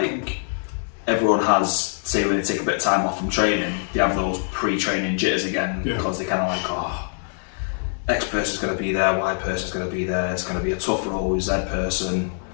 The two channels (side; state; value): right; silent; 63 dB below the other